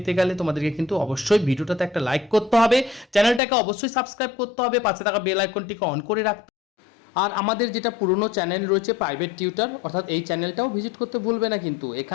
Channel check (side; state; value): right; drops out; at 3.4 s